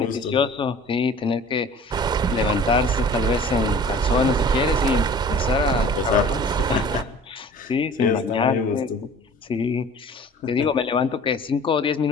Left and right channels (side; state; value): both; normal; correlation 0.45